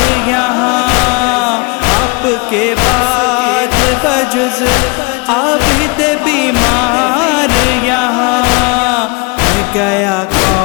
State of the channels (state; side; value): quieter; right; 30.1 dB